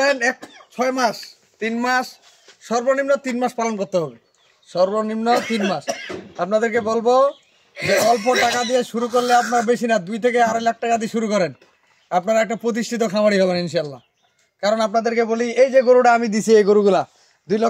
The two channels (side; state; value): both; identical; correlation 1.00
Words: 6 মাস 3 মাস সর্বনিম্ন 3 মাস পালন করতে হবে, সর্বনিম্ন 3 মাস। আপনাদেরকে বলবো যে অল্প টাকা দিয়ে শুরু করলে আপনার বেশি না, 2 থেকে 2.5 লাখ টাকা দিয়ে শুরু করেন, আপনারা একটা প্রতিষ্ঠিত খামারি হবেন ইনশাল্লাহ। কারণ আপনাদেরকে বলি, এই যে গরুটা আমি দিছি, এই গরুগুলা